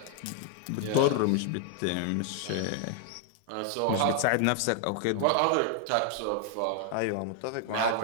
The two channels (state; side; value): different; both; correlation 0.00